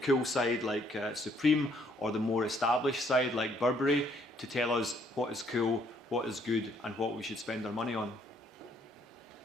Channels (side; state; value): both; normal; correlation 0.67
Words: side like Supreme or the more established side like Burberry, to tell us what is cool, what is good, and what we should spend our money on.